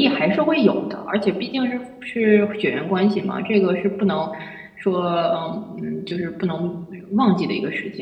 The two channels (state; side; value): identical; both; correlation 1.00